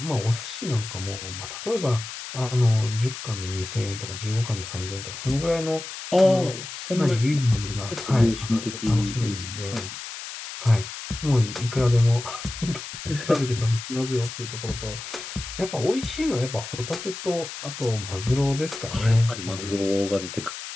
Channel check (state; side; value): noise; left; hiss, 10 dB below the sound